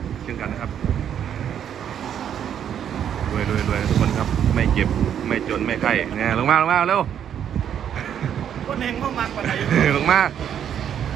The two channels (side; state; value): left; quieter; 9.2 dB